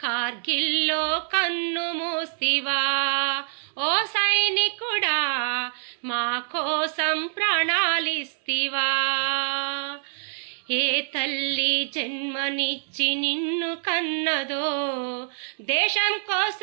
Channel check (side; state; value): left; silent; 61 dB below the other